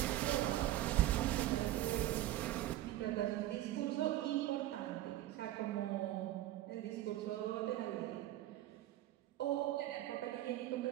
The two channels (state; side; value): quieter; left; 14.5 dB